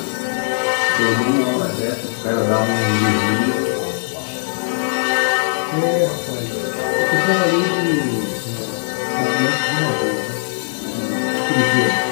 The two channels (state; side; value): silent; right; digital silence